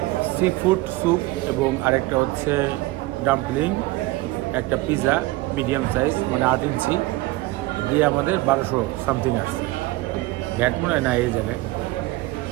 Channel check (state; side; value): quieter; left; 19.6 dB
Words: সি ফুড স্যুপ এবং আরেকটা হচ্ছে ডাম্পলিং, একটা পিৎজা মিডিয়াম সাইজ মানে 8 ইঞ্চি দিয়ে আমাদের 1200 সামথিং আসছে। ভ্যাট মনে হয় না এই জায়গায়।